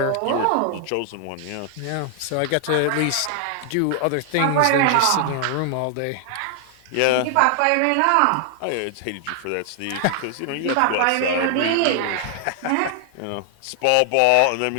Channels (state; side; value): different; both; correlation 0.00